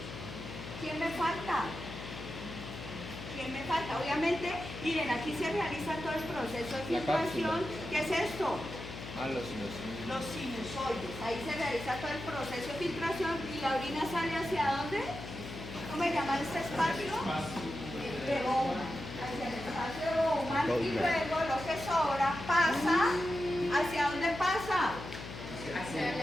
¿Quién me falta? ¿Quién me falta? Obviamente, miren, aquí se realiza todo el proceso de La filtración. ¿Qué es esto? Los Los sinusoides. Ahí se realiza todo el proceso de filtración y la orina sale ¿hacia dónde? ¿Cómo se llama este espacio? De Bowman. Hacia el espacio de Bowman y luego lo que sobra pasa. ¿Hacia dónde pasa?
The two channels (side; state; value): left; noise; hum, 10 dB below the sound